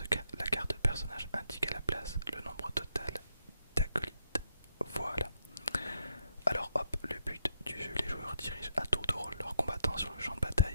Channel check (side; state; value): both; inverted; correlation -0.76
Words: cas, la carte de personnage indique à la place le nombre total d'acolytes. Voilà. Alors hop, le but du jeu, les joueurs dirigent à tour de rôle leurs combattants sur le champ de